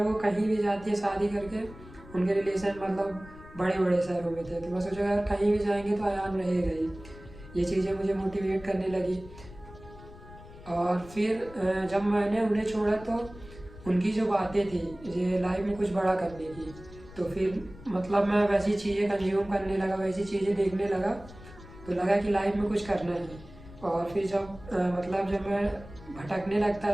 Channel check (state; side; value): noise; left; rumble, 18 dB below the sound